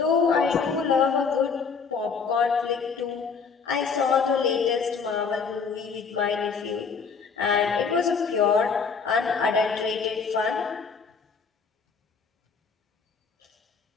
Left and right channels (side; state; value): right; quieter; 5.5 dB